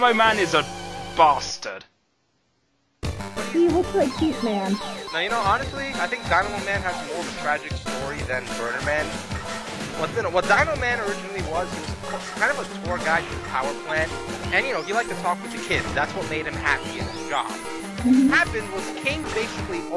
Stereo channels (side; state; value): both; identical; correlation 1.00